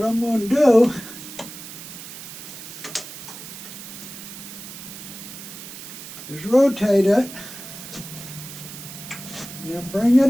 I'm going to do is rotate it and then bring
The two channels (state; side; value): noise; right; hiss, 12 dB below the sound